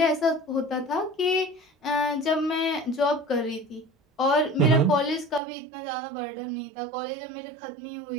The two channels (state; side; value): drops out; left; at 5.4 s